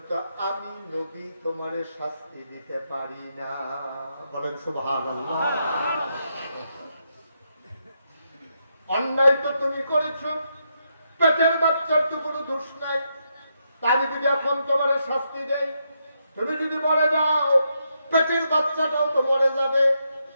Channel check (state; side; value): inverted; both; correlation -0.81